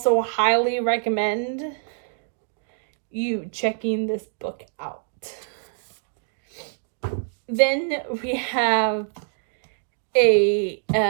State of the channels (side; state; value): left; silent; digital silence